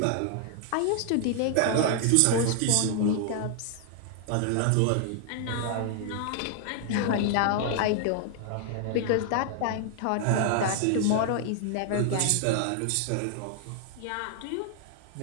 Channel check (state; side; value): different; both; correlation 0.00